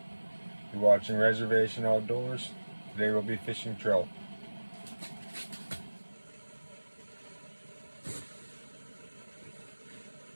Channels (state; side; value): inverted; both; correlation -1.00